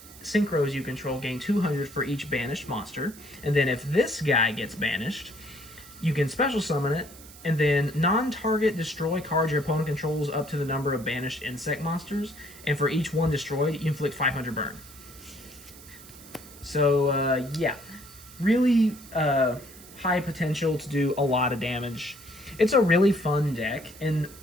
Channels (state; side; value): noise; right; hiss, 19 dB below the sound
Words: synchros you control gain 200 for each banished monster. And then if this guy gets banished, you can special summon it, and then non-target destroy cards your opponent controls up to the number of banished insect monsters, and for each one destroyed, you inflict 500 burn. So, yeah, really high potential to do a lot of damage. It's a really fun deck, and